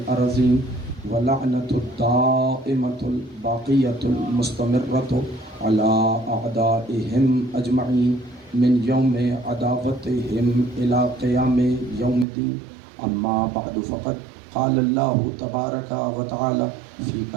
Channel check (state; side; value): drops out; left; at 12.2 s